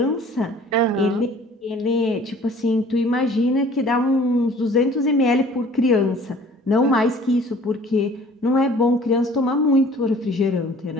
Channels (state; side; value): normal; both; correlation 0.50